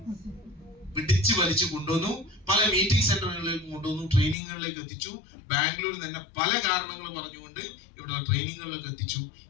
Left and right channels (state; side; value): drops out; right; at 4.4 s